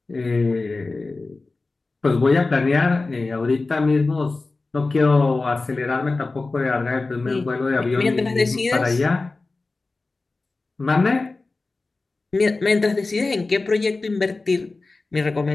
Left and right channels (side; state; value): right; quieter; 3.5 dB